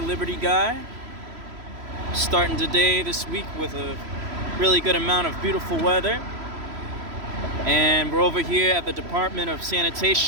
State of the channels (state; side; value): late; left; 3.0 ms